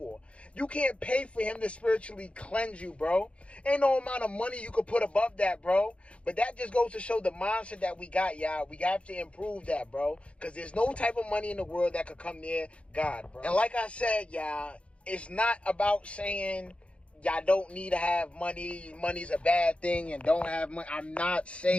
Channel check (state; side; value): late; right; 0.061 ms